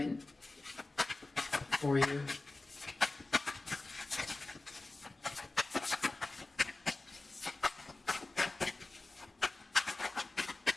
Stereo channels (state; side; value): quieter; right; 3.1 dB